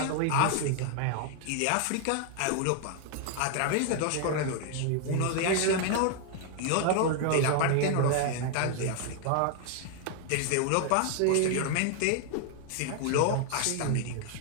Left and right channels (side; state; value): both; different; correlation 0.00